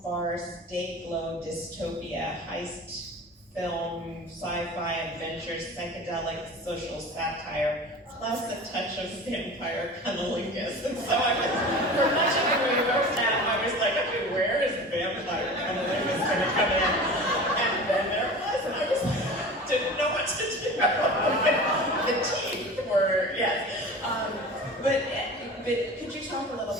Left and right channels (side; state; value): both; normal; correlation 0.36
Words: farce, day-glow dystopia, heist film, sci-fi adventure, psychedelic social satire, plus a touch of vampire cunnilingus. And so for much of the movie I was like, okay, where is vampire cunnilingus going to come in? And then there it was, and I was like, didn't know what to do. The teeth were, yes. But could you talk a little